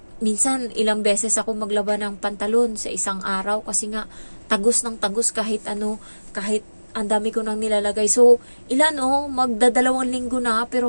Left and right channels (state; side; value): inverted; both; correlation -1.00